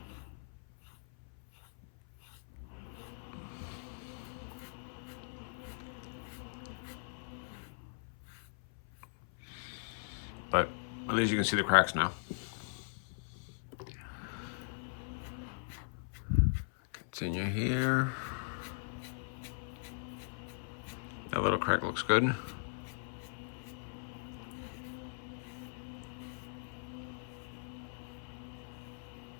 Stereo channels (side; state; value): right; silent; 52 dB below the other